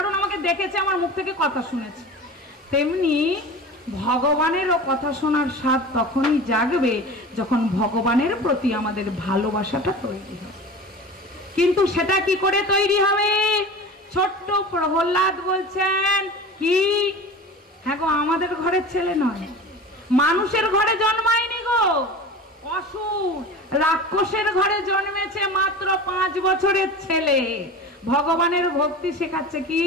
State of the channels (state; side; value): normal; both; correlation 0.34